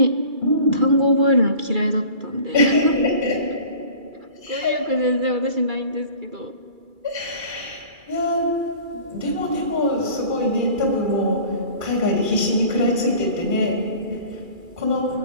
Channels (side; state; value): left; late; 2.3 ms